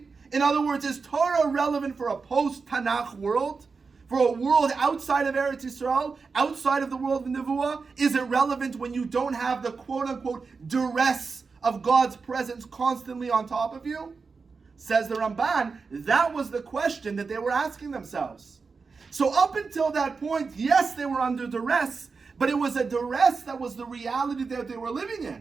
In other words, is Torah relevant for a post-Tanakh world? For a world outside of Eretz Yisrael, outside of the world of Nevuah? Is it relevant when you don't have the quote-unquote duress of God's presence constantly on top of you? Says the Ramban, that was the question that they were asking themselves. So up until that point, yes, they were under duress, but it was a duress that was the reality that they were living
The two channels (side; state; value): left; quieter; 4.8 dB